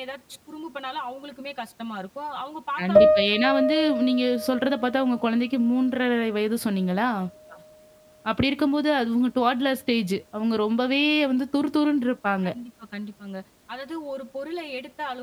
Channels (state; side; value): identical; both; correlation 1.00